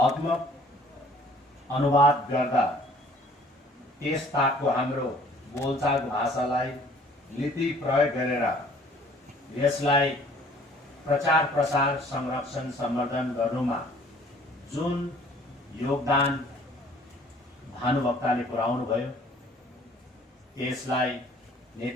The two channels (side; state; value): both; normal; correlation 0.55